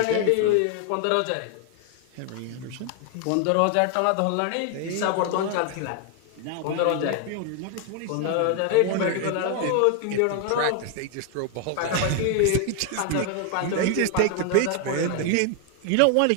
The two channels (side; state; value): both; different; correlation 0.00